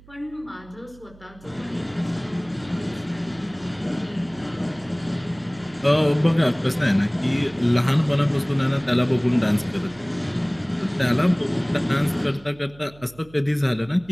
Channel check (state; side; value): noise; right; hum, 24 dB below the sound